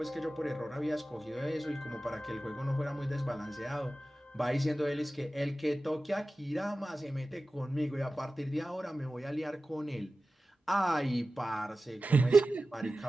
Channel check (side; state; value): both; normal; correlation 0.95